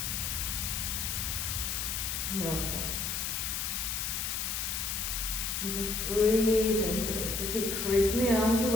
Lovely. And just breathe into it. So keep creeping the arms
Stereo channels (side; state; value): left; noise; hiss, 1 dB below the sound